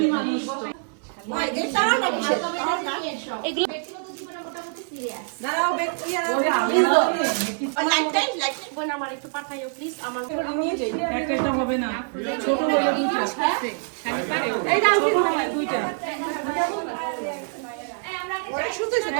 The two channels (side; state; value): left; silent; 62 dB below the other